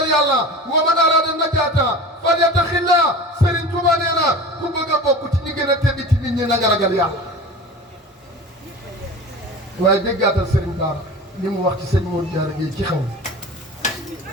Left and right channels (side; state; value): both; normal; correlation 0.35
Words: yàlla wa man arada najaata falyattaxillah Serigne Touba nee na ku bëgg a bokk ci ñi gën a tedd ci nit ñi na nga ragal yàlla waaye déggaatal Serigne Bara li mu wax ci sëñ Modou Diarra Gueye ci xaw